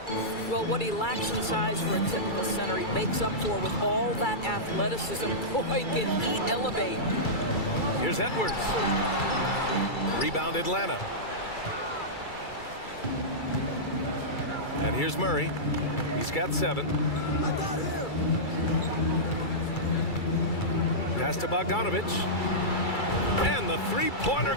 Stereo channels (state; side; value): late; right; 2.3 ms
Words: Well, what he lacks in size for a typical center, he makes up for with all that athleticism. Boy, can he elevate. Here's Edwards. Rebound Atlanta. And here's Murray. He's got 7. Pass to Bogdanovich. And the three-pointer